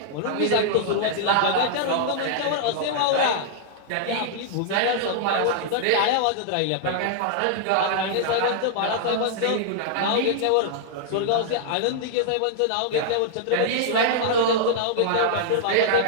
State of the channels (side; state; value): both; different; correlation -0.01